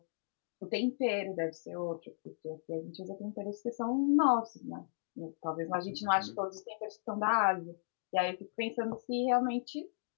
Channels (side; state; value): right; silent; digital silence